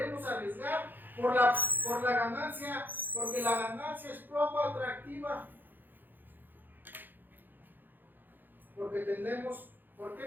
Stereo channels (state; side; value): late; left; 0.090 ms